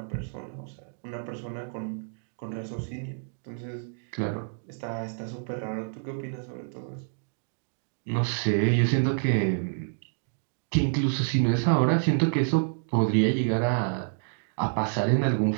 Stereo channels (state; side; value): silent; left; digital silence